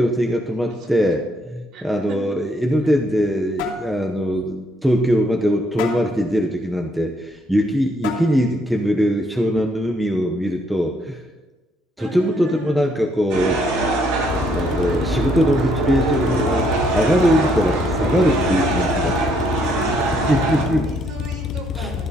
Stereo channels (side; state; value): both; normal; correlation 0.70